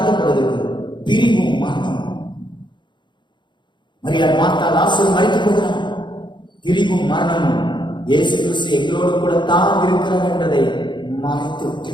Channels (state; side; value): late; right; 0.22 ms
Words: பிரிவும் மரணமும். மரியாள் மார்த்தா லாசரு மரித்துக் கொள்கிறான். பிரிவும் மரணமும் இயேசு கிறிஸ்து எங்களோடு கூட தான் இருக்கிறார் என்பதை மறைத்து